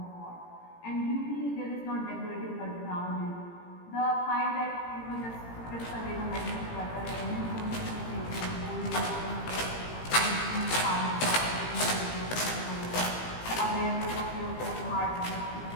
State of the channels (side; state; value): right; late; 18 ms